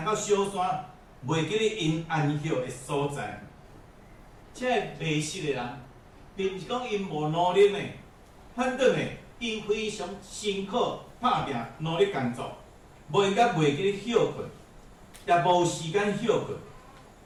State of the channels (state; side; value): identical; both; correlation 1.00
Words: 到小山，袂记咧因安歇的所在。这迷失的人，并毋是讲因无努力呢，反倒呢，因非常辛苦打拼，努力工作，袂记咧休困，也无时间休困，